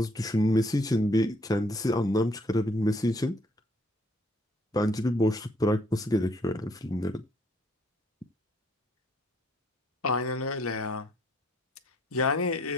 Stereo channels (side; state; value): both; normal; correlation 0.65